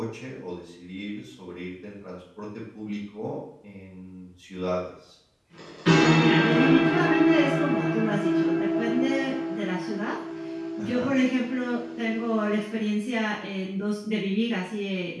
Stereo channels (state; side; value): identical; both; correlation 1.00